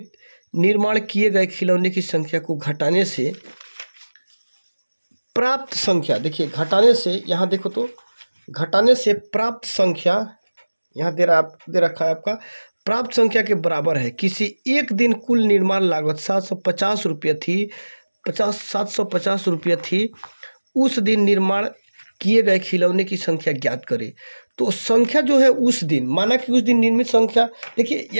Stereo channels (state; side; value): inverted; both; correlation -1.00